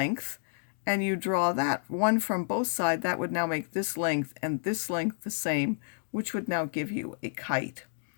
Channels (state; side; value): silent; right; digital silence